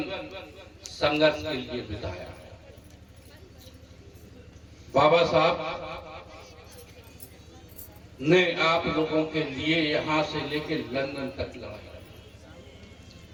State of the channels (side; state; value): both; identical; correlation 1.00